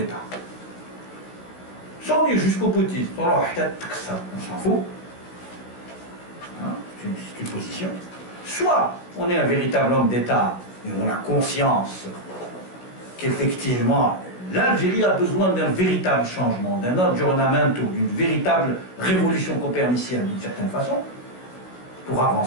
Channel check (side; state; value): right; late; 16 ms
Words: Sans aller jusqu'au boutisme, on s'en fout. Hein, c'est une position. Soit on est un véritable homme d'État et on a conscience qu'effectivement l'Algérie a besoin d'un véritable changement, d'un aggiornamento, d'une véritable révolution copernicienne d'une certaine façon, pour